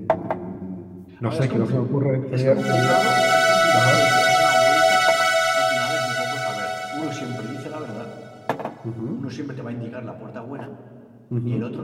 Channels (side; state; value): both; identical; correlation 1.00